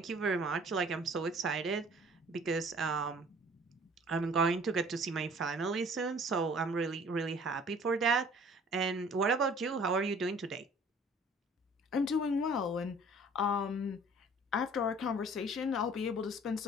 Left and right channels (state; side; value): normal; both; correlation 0.52